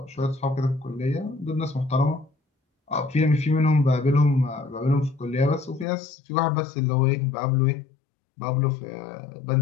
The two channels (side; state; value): right; drops out; at 5.9 s